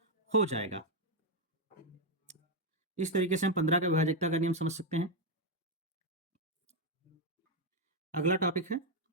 हो जाएगा। इस तरीके से हम 15 का विभाजकता का नियम समझ सकते हैं। अगला टॉपिक है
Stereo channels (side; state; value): both; normal; correlation 0.03